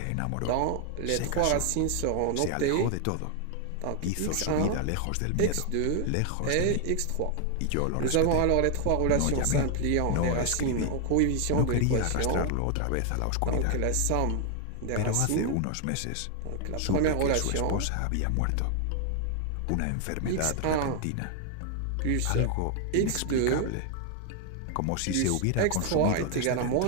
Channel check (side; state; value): both; different; correlation 0.00